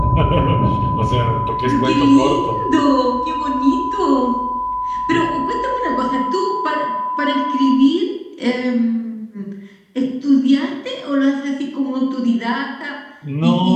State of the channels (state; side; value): identical; both; correlation 1.00